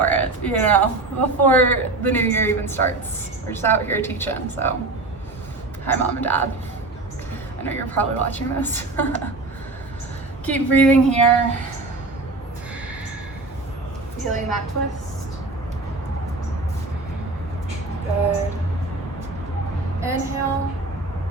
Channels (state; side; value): quieter; left; 3.2 dB